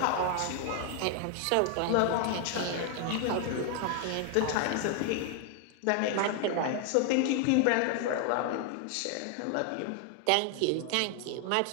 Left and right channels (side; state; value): both; different; correlation 0.00